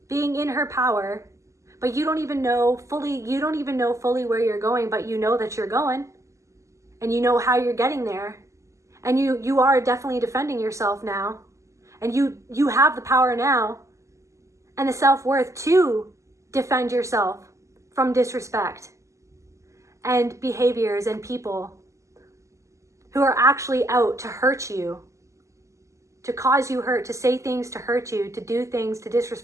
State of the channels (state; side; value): late; left; 0.15 ms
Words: being in her power, but you don't even know fully where you're going, but you know that you're going, and you know how you're getting there. And you are definitely defending yourself now. And you have the power now and the self-worth to defend yourself from disrespect and behaviors and people who are actually out to hurt you, to cause you hurt, to say things to hurt you, to do things to